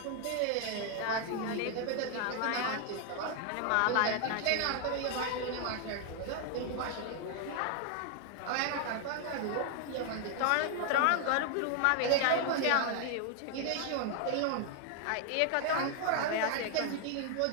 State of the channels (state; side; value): different; both; correlation 0.00